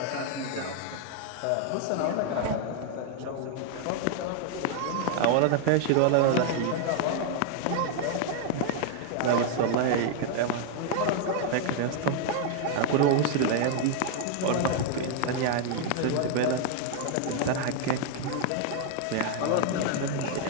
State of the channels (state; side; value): different; both; correlation 0.00